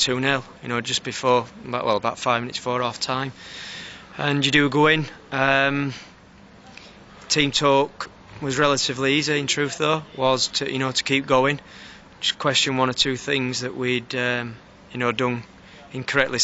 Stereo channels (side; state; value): both; identical; correlation 1.00